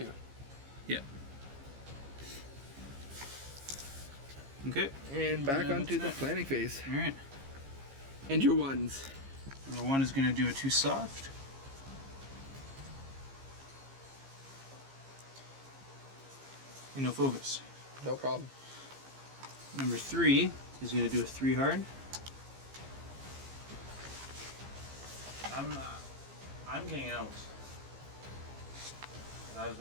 Yeah. Okay. And back Yeah, onto the that's it. planning phase. Alright. And your 1s. Number 1 is going to do a 2 soft. And no focus. No problem. Number 3 is going to do a 3 hard. I'm getting out. I was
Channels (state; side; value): late; left; 15 ms